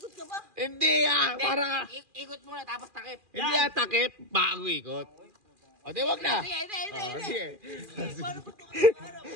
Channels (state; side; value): late; left; 2.4 ms